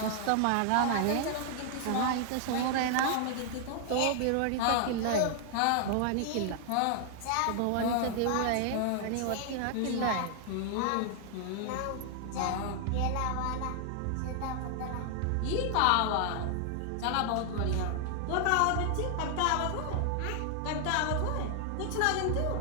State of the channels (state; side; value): different; both; correlation 0.00